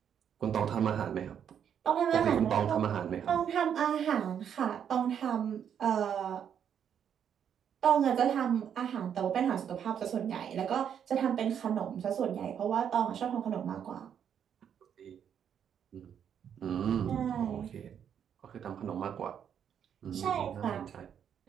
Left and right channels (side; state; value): left; quieter; 8.5 dB